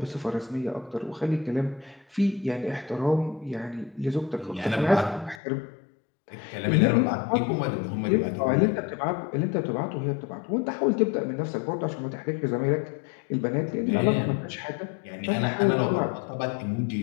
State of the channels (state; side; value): drops out; right; at 5.4 s